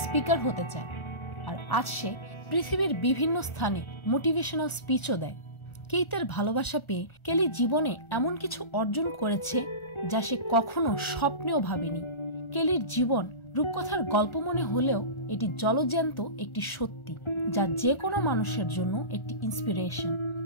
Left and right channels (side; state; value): right; late; 1.4 ms